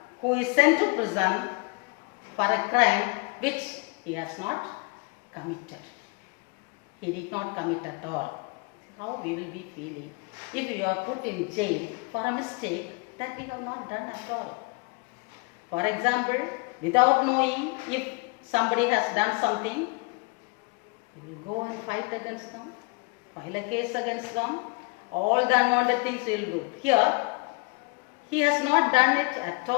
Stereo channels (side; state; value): right; quieter; 29.5 dB